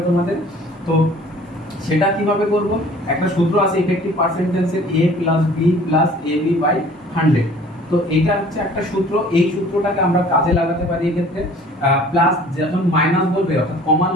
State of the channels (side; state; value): both; normal; correlation 0.50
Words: তোমাদের। তো সেটা কিভাবে করব? একটা সূত্র আছে এফেক্টিভ পার্সেন্টেজের, a + b + ab/100। তো এটা হচ্ছে একটা সূত্র, এই সূত্রটাকে আমরা কাজে লাগাতে পারি এই ক্ষেত্রে। প্লাস যখন মাইনাস বলবে, অর্থাৎ